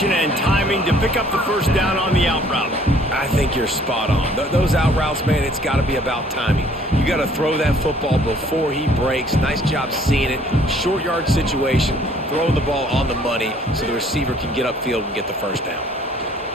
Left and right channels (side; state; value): both; normal; correlation 0.58